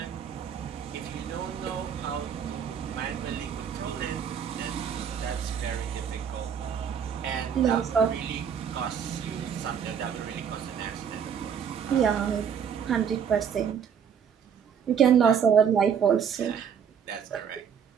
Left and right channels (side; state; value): left; quieter; 7.6 dB